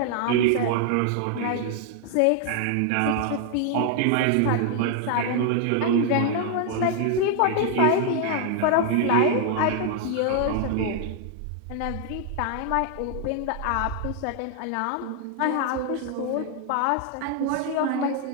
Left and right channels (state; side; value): different; both; correlation 0.00